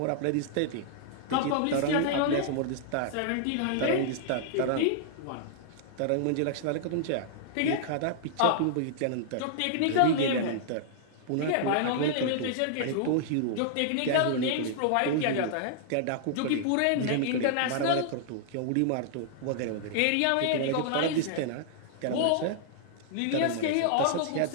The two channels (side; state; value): both; different; correlation -0.01